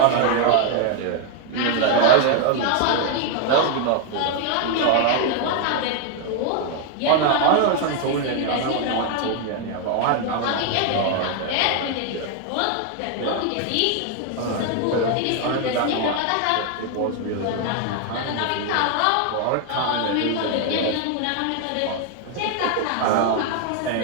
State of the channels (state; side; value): different; both; correlation 0.00